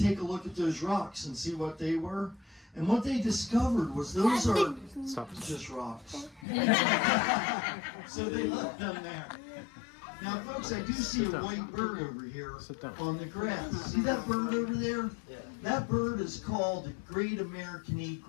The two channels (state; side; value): drops out; right; at 6.5 s